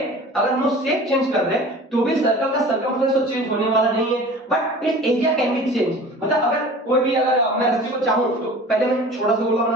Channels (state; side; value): normal; both; correlation 0.41